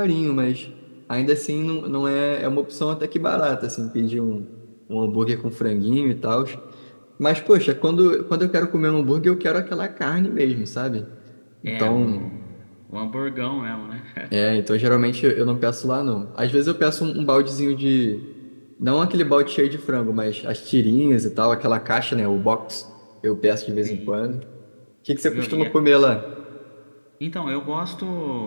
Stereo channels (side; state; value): both; inverted; correlation -1.00